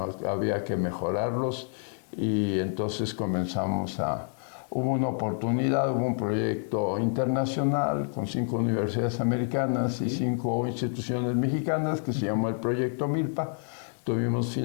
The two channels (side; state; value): right; silent; 59 dB below the other